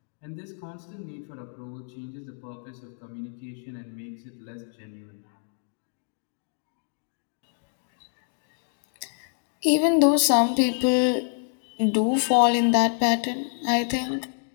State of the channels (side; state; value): right; silent; digital silence